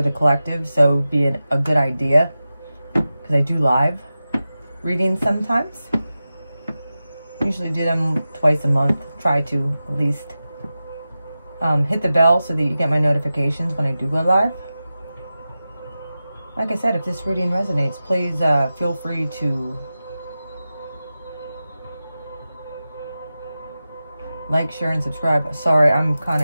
the collective, so it would be a good idea, because I do live readings sometimes. Usually do them twice a month. Try to at least hit the bell so that you get my notifications when I do go live. Like I said, if this reading resonates, please feel free to like, share, and subscribe. Sorry, I'm kind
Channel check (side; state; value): both; inverted; correlation -0.94